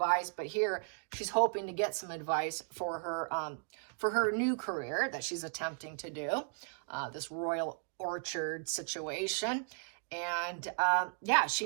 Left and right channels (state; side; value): silent; left; 54 dB below the other